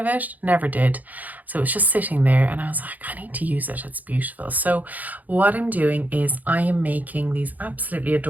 it. Never did. So it's just sitting there and I was like, I need to use it. It's beautiful. So what I'm doing is I am making these absolutely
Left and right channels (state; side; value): late; left; 0.080 ms